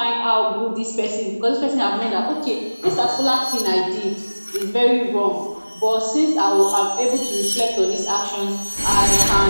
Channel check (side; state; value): both; inverted; correlation -1.00